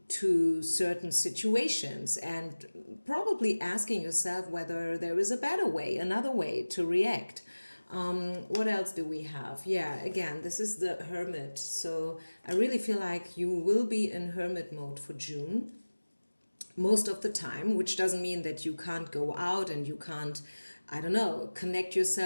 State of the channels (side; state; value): both; inverted; correlation -1.00